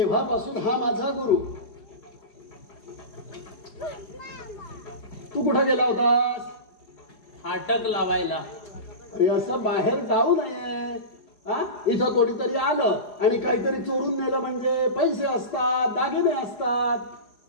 हा माझा गुरु. तू कुठं गेला होतास? फाटक लावायला. अरे असं बाहेर जाऊ नये. इथं कोणीतरी आलं आणि काहीतरी चोरून नेलं म्हणजे पैसे असतात, दागिने असतात.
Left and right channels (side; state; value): right; late; 4.8 ms